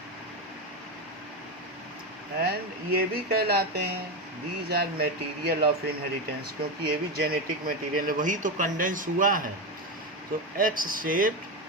And ये भी कहलाते हैं these are material of inheritance, क्योंकि ये भी जेनेटिक मटेरियल है, वही तो कंडेंस हुआ है. तो X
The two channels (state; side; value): normal; both; correlation 0.14